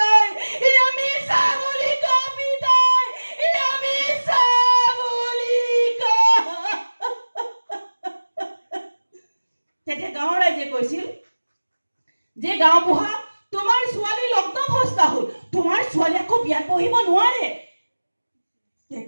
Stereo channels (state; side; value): inverted; both; correlation -1.00